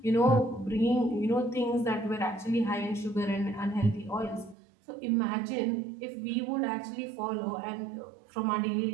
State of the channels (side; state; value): left; drops out; at 4.5 s